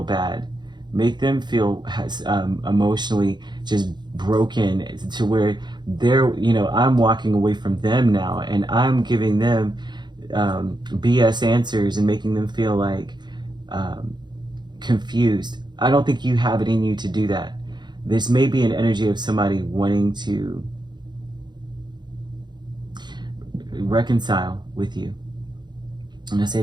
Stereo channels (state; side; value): late; left; 0.21 ms